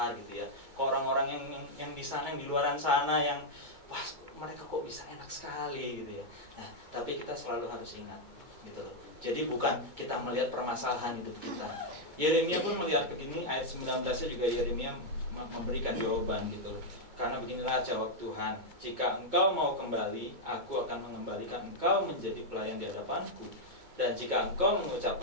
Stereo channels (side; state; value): left; late; 2.2 ms